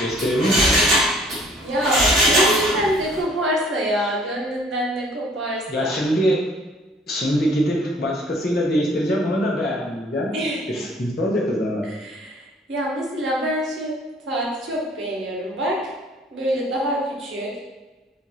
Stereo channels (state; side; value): normal; both; correlation 0.57